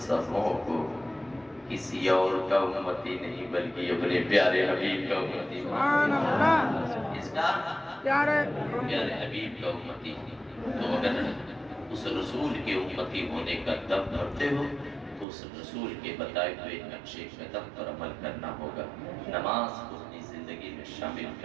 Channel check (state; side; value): drops out; left; at 15.2 s